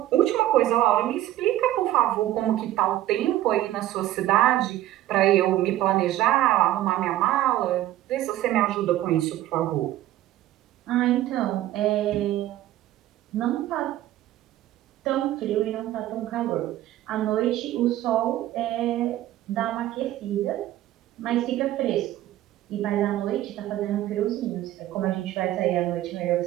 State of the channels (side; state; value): left; quieter; 14.2 dB